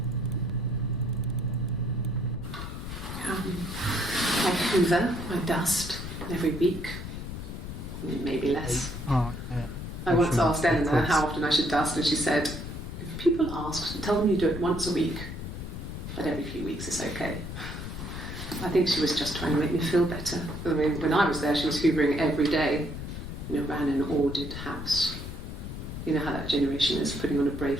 I hoover, I dust every week, maybe less. Oh, yeah. I once asked Eleanor how often I should dust, and she said, if people ask, tell them you do it once a week, but every few weeks is okay. I think she was just trying to make me feel better. I mean, when I was there, she was hoovering every day, ran an ordered house. You know how that generation is, putting on a brave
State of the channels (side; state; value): left; noise; rumble, 8 dB below the sound